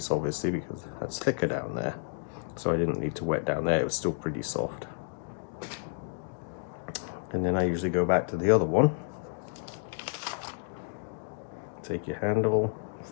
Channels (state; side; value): silent; right; digital silence